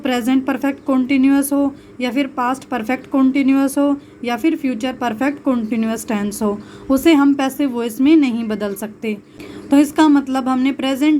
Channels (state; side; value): identical; both; correlation 1.00